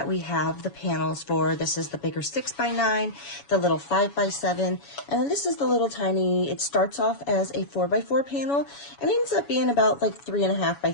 we have the panels for. This is the bigger 6x9, the little 5x7, and then this is the little tiny, it starts off as a 4x4 panel and ends up being about like 3.5 by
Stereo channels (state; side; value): late; right; 7.1 ms